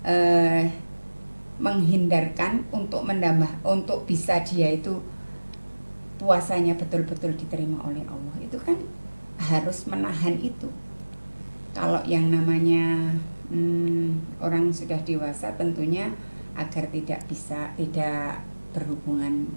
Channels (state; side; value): inverted; both; correlation -1.00